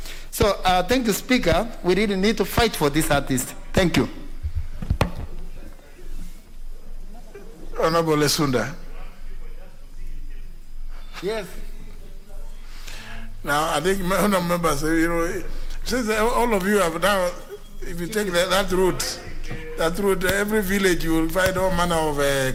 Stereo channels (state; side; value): identical; both; correlation 1.00